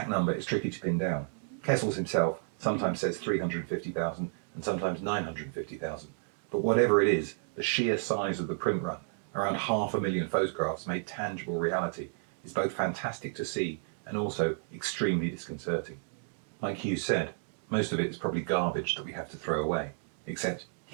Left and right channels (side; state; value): left; silent; digital silence